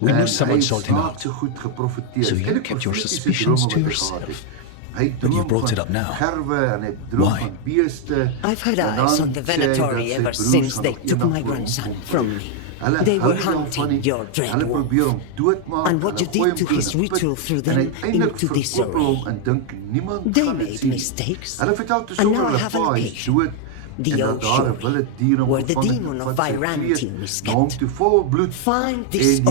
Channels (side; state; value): both; different; correlation 0.01